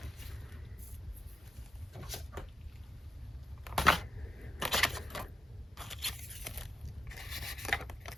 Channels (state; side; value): normal; both; correlation 0.85